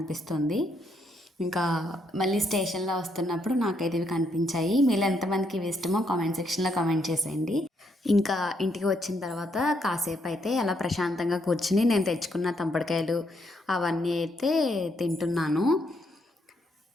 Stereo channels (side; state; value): both; normal; correlation 0.75